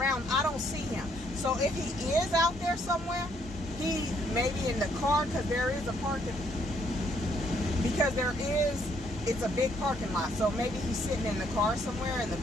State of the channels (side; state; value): both; normal; correlation 0.69